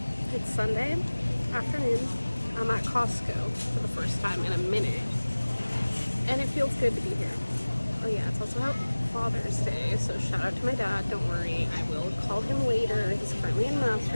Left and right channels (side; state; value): both; inverted; correlation -1.00